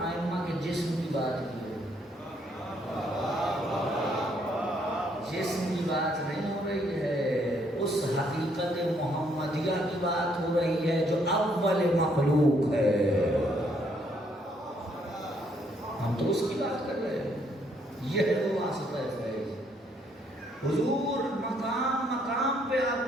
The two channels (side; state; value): both; normal; correlation 0.70